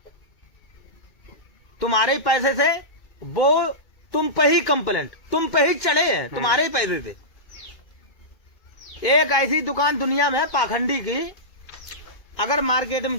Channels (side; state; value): right; late; 2.1 ms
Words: तुम्हारे ही पैसे से वो तुम पे ही कंप्लेंट, तुम पे ही चढ़े हैं, तुम्हारे ही पैसे से। एक ऐसी दुकान दुनिया में पाखंडी की, अगर मार्केट में